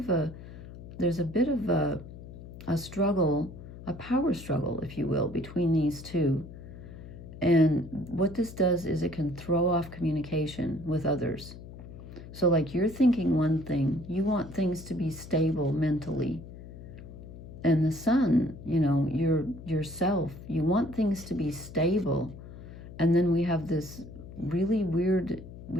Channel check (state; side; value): noise; left; hum, 14 dB below the sound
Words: a struggle, a power struggle, if you will, between these two. And what this does is it can throw off communication with others. So like, you're thinking one thing, you want things to be stable mentally. And the sun, you know, yourself, you want things to be stable. And then we have this really weird,